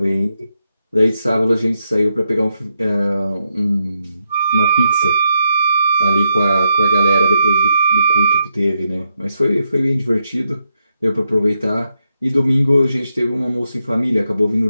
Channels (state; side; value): inverted; both; correlation -0.83